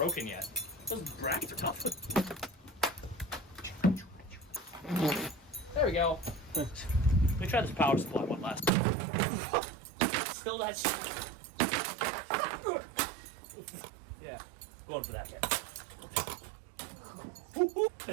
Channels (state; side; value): drops out; left; at 8.7 s